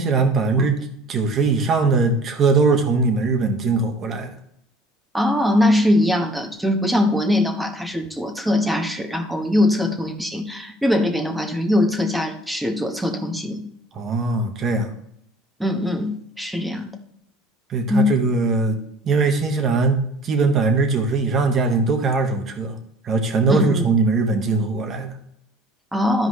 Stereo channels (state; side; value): normal; both; correlation 0.53